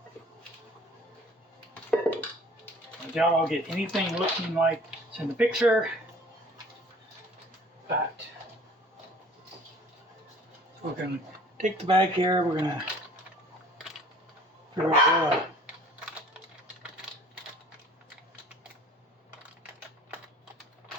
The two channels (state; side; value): normal; both; correlation 0.50